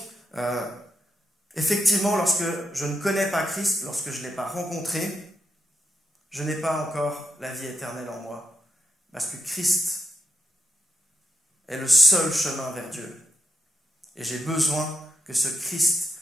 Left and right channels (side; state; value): both; normal; correlation 0.82